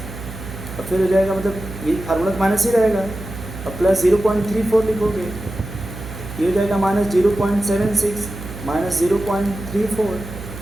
और फिर हो जाएगा, मतलब ये फार्मूला माइनस ही रहेगा, और प्लस 0.34 लिखोगे, ये हो जाएगा -0.76 -0.34,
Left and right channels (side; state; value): right; noise; hum, 12 dB below the sound